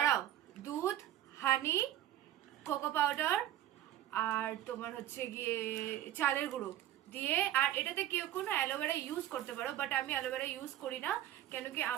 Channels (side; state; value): left; quieter; 12.8 dB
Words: দুধ, হানি, কোকো পাউডার, আর তোমার হচ্ছে গিয়ে চালের গুঁড়ো দিয়ে, আর এটাতে কেউ কোনো অ্যালোভেরা ইউজ করতে পারো, বাট আমি অ্যালোভেরা ইউজ করি না। কেন কি